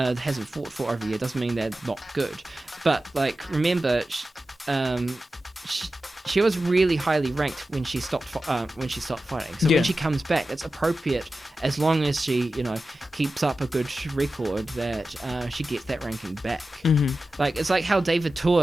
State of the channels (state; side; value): normal; both; correlation 0.93